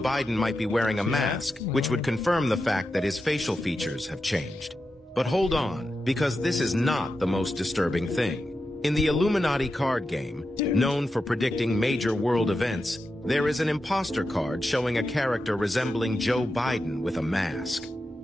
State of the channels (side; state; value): both; normal; correlation 0.89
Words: might be wearing a mask, which would confirm the fact that his facial features have changed. But hold on, because this is not the most disturbing thing. In the Illuminati card game, known for predicting major world events, there is an imposter card showing a character resembling Joe Biden with a mask.